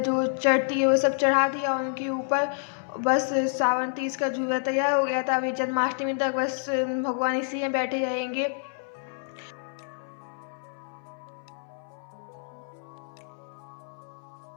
चढ़ती है वो सब चढ़ा दिया उनके ऊपर। बस सावन तीज का झूला तैयार हो गया था। अभी जन्माष्टमी तक बस भगवान इसी में बैठे रहेंगे।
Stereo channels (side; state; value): right; silent; 58 dB below the other